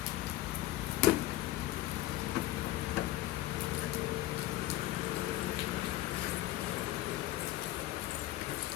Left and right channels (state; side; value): quieter; right; 15.8 dB